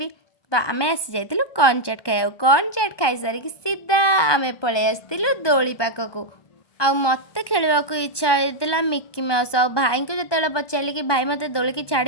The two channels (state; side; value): late; right; 1.2 ms